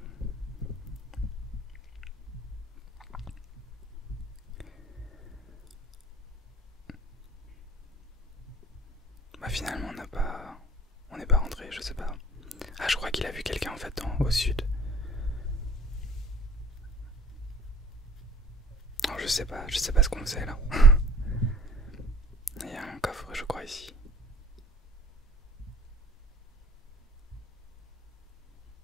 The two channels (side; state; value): both; normal; correlation 0.51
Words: Bah finalement on n'est pas rentré, je sais pas. Ah je crois qu'il a vu quelqu'un en fait au sud. Alors je sais pas ce qu'on faisait là. Il y a un coffre je crois ici.